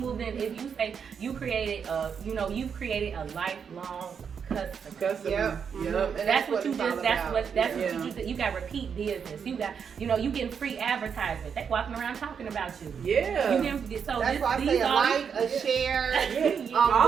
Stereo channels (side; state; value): left; quieter; 6.9 dB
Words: in. If you say you created you've created a lifelong customer. That's what you just. That's what you do. You got repeat business. You got. You getting free advertisement. They walking around talking about you. Yeah. That's why I say a like, a share,